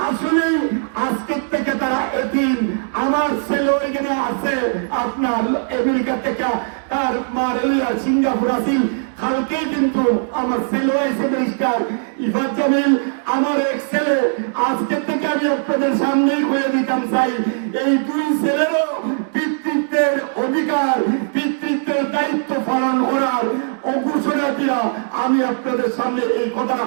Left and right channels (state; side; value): silent; left; digital silence